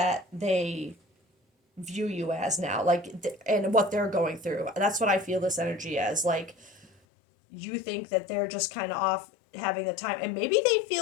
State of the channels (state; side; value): drops out; right; at 6.9 s